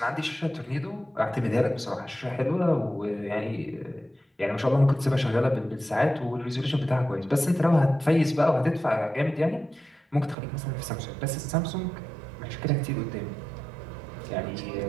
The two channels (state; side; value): drops out; left; at 10.4 s